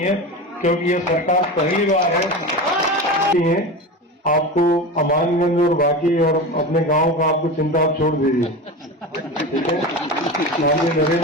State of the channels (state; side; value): normal; both; correlation 0.26